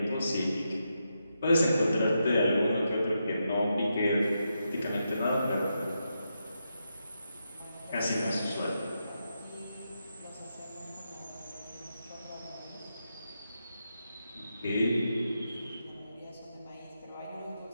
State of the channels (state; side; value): inverted; both; correlation -0.85